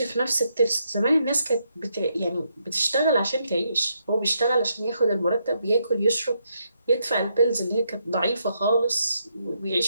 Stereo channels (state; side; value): inverted; both; correlation -0.78